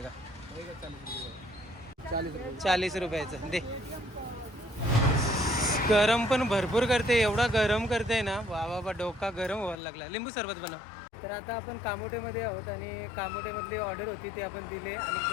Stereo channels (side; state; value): right; drops out; at 9.8 s